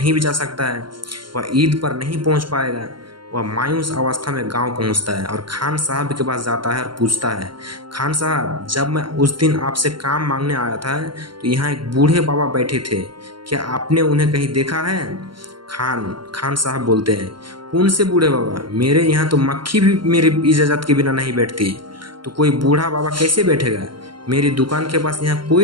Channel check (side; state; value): left; late; 0.73 ms